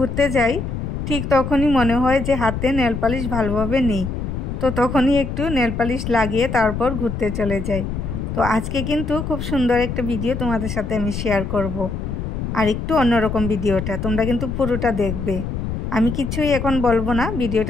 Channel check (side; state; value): left; noise; rumble, 4 dB below the sound